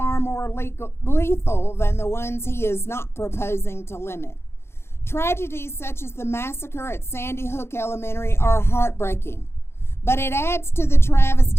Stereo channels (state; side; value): late; right; 0.12 ms